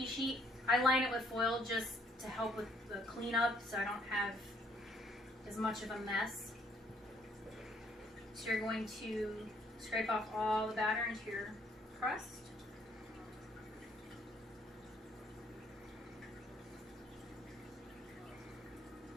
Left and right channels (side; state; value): both; normal; correlation 0.65